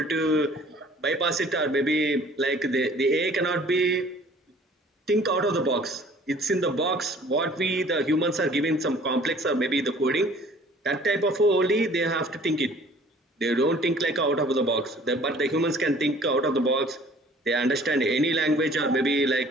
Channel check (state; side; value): normal; both; correlation 0.52